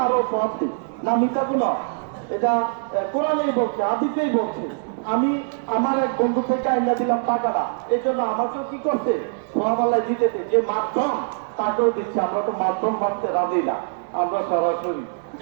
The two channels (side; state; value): left; silent; 63 dB below the other